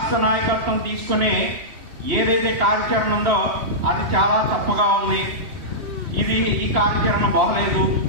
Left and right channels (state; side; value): late; left; 3.1 ms